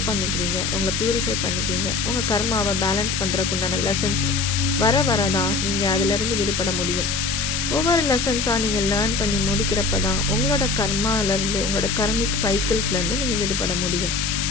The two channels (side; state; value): left; noise; hiss, 1 dB below the sound